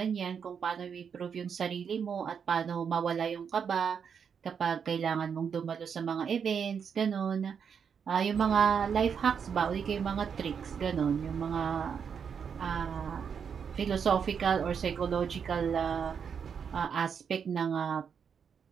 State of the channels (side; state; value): left; quieter; 6.9 dB